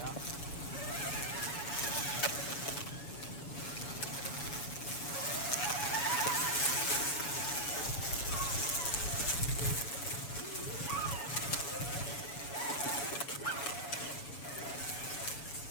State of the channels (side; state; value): right; late; 7.2 ms